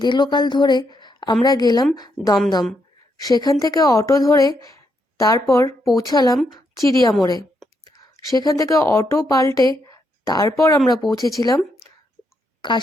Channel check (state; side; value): normal; both; correlation 0.79